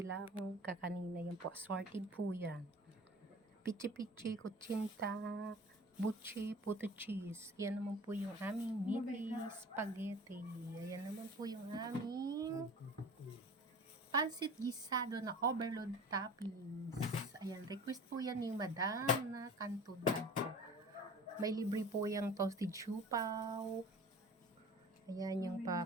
kakanina. Yan po, assorted po yan. Pichi-pichi, kutsinta, buchi, puto cheese. Yan naman po yung aming mini spaghetti. Ayan naman po yung aming pansit gisado na overload toppings. Ayan, request po yan ni Madam na kanto daw po. May libre po yung toasted siupaw. Ayan yung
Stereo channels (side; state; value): both; normal; correlation 0.41